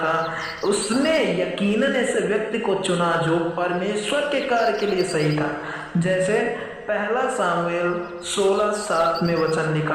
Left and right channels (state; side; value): identical; both; correlation 1.00